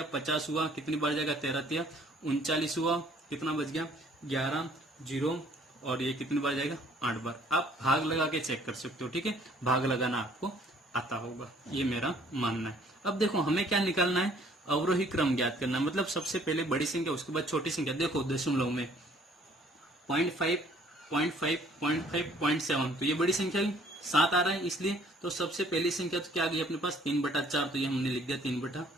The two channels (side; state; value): both; normal; correlation 0.59